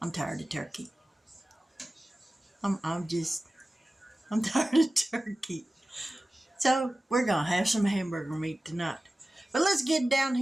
I'm tired of turkey. I'm tired of turkey. So, we're gonna have some hamburger meat tonight. But let's get down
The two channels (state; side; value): normal; both; correlation 0.96